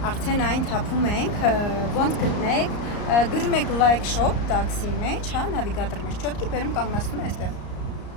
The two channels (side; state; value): right; late; 34 ms